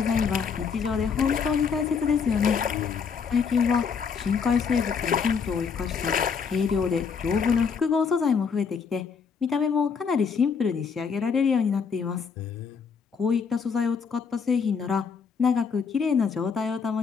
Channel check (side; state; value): right; quieter; 6.0 dB